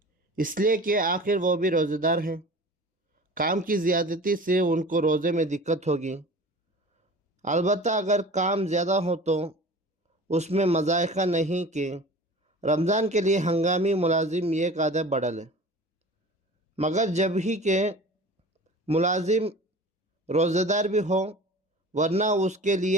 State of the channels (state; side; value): normal; both; correlation 0.39